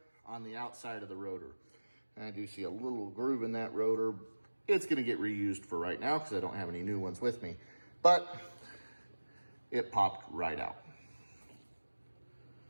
on the outside of the rotor. And I do see a little groove in that rotor. It's gonna get reused for right now because I don't have any new ones with me, but it popped right out.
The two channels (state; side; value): inverted; both; correlation -1.00